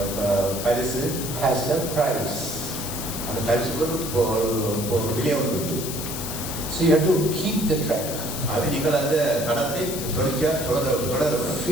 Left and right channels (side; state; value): left; noise; hiss, 7 dB below the sound